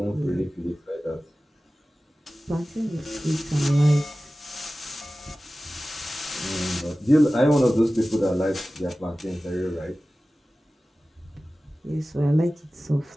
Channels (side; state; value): both; normal; correlation 0.96